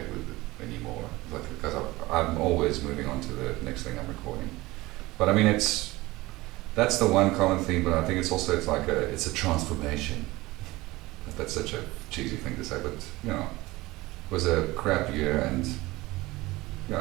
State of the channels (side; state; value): left; quieter; 20.1 dB